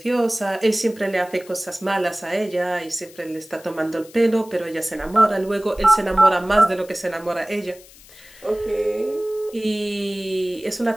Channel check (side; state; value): left; noise; hiss, 22 dB below the sound